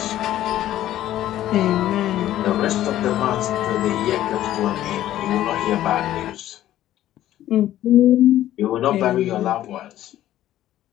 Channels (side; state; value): right; quieter; 13.1 dB